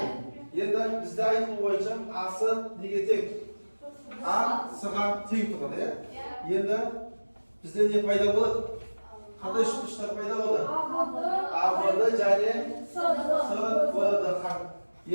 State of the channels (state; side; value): inverted; both; correlation -1.00